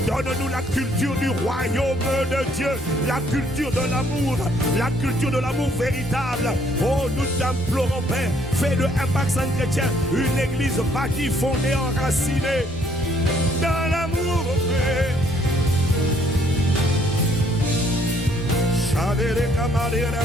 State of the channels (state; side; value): normal; both; correlation 0.65